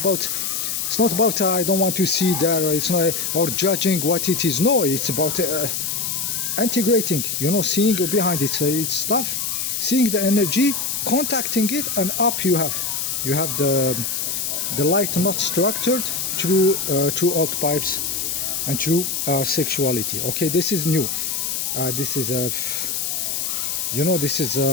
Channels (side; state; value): left; noise; hiss, 1 dB below the sound